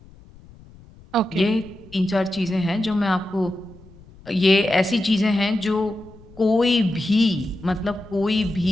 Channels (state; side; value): noise; left; rumble, 23 dB below the sound